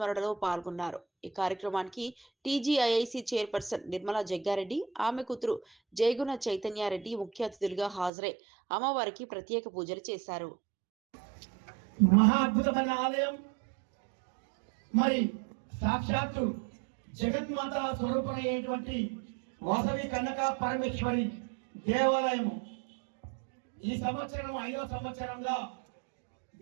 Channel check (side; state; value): left; drops out; at 8.1 s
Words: పాల్గొన్నారు. ఈ కార్యక్రమానికి టీజీఐఐసి చైర్పర్సన్ నిర్మలా జగ్గారెడ్డి, ఆమె కూతురు జయగుణ చైతన్యారెడ్డి ముఖ్య అతిథులుగా హాజరై అమ్మవారికి ప్రత్యేక పూజలు చేశారు. మహా అద్భుతమైన ఆలయం, మరి సాక్షాత్తు జగన్మాత స్వరూపమైనటువంటి వాసవి కన్యకా పరమేశ్వరి దేవాలయము ఈ సంవత్సరం 5వ సంవత్సరంగా